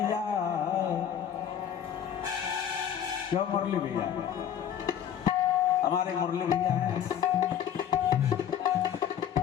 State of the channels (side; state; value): right; quieter; 9.4 dB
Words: क्यों मुरली भैया, हमारे मुरली भैया हैं।